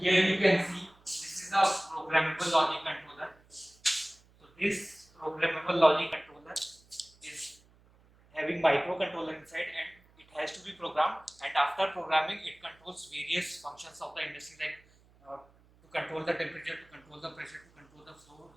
here you can see this is a programmable logic controller. So this programmable logic controller is having microcontroller inside, and it has to be programmed, and after programming it controls various functions of the industry like to control the temperature, to control the pressure, to control the flow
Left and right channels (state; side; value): noise; right; hum, 29 dB below the sound